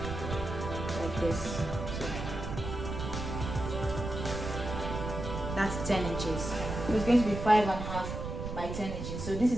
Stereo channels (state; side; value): noise; right; rumble, 5 dB below the sound